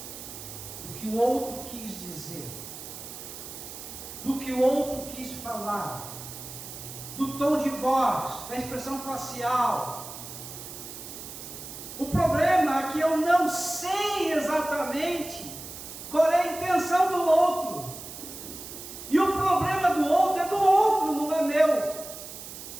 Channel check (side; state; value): right; noise; hiss, 12 dB below the sound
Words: do que o outro quis dizer, do que o outro quis falar, do tom de voz, da expressão facial. O problema é que eu não sei exatamente qual é a intenção do outro. E o problema do outro é do outro, não é meu.